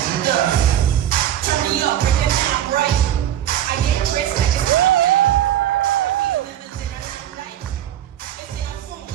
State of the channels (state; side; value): quieter; left; 11.5 dB